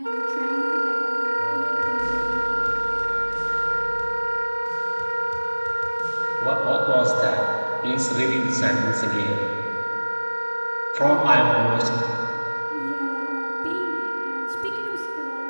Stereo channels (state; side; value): inverted; both; correlation -1.00